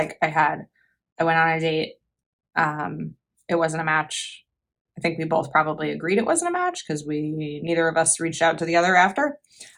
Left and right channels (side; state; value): both; identical; correlation 1.00